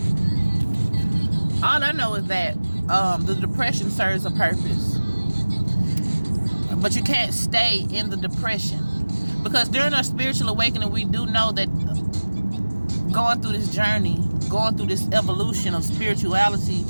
All I know is that the depression serves a purpose, but you can't stay in the depression, because during our spiritual awakening, we do know that going through this journey, going through this evolution of spirituality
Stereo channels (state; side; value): inverted; both; correlation -1.00